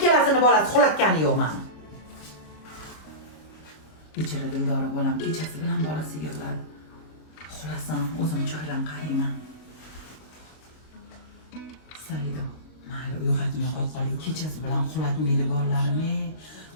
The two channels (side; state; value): right; late; 26 ms